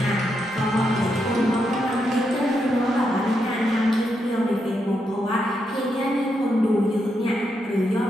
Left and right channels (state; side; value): normal; both; correlation 0.82